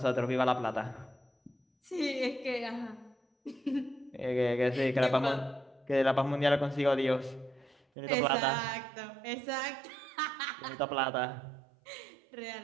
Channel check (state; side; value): drops out; left; at 7.8 s